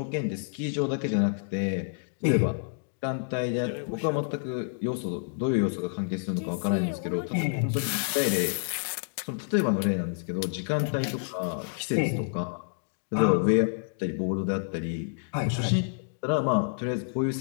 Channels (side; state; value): right; silent; digital silence